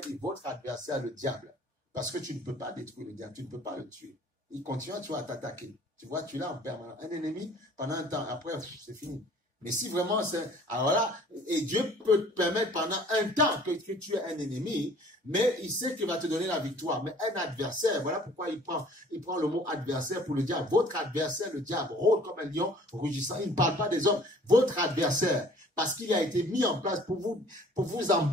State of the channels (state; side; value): normal; both; correlation 0.53